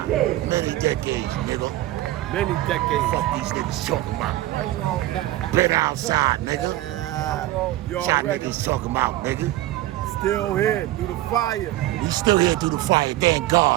Many decades, nigga. Many decades. Fuck these niggas talking about. Been outside, nigga. You Y'all already niggas talking about, nigga. still here through the fire. We still here through the fire. Thank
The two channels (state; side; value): quieter; left; 15.9 dB